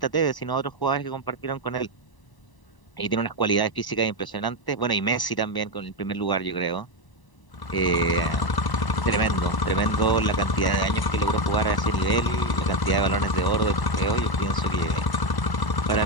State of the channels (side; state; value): right; late; 1.0 ms